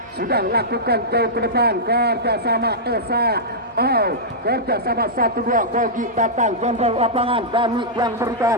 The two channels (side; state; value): both; normal; correlation -0.12